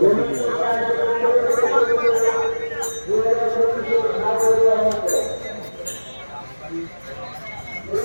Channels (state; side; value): inverted; both; correlation -1.00